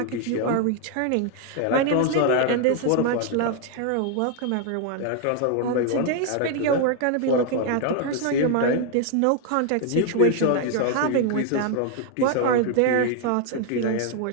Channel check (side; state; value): both; different; correlation 0.00